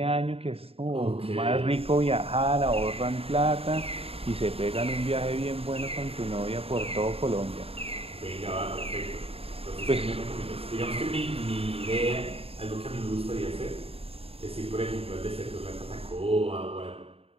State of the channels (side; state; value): left; late; 0.28 ms